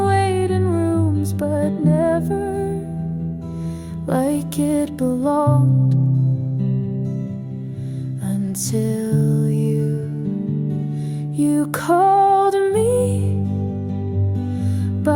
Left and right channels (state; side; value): identical; both; correlation 1.00